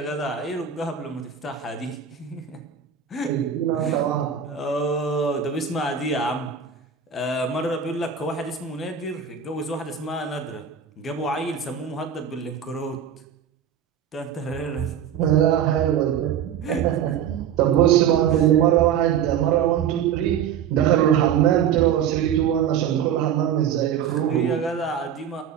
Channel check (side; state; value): left; quieter; 8.4 dB